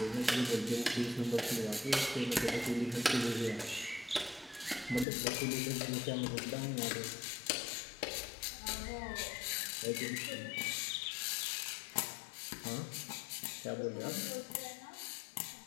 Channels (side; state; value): right; drops out; at 5.1 s